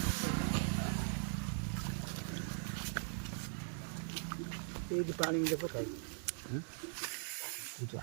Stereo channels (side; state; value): left; silent; digital silence